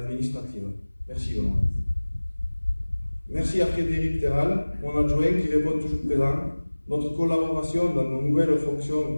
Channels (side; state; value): both; inverted; correlation -1.00